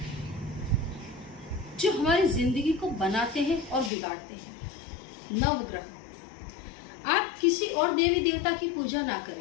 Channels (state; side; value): drops out; right; at 3.9 s